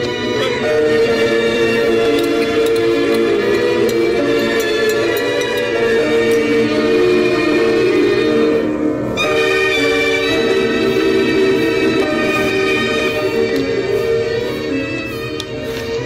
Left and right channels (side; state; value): both; identical; correlation 1.00